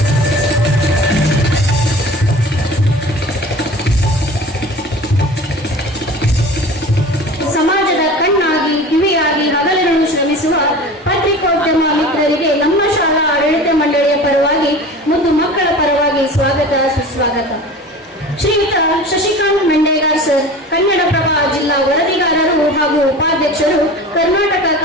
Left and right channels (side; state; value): both; normal; correlation 0.38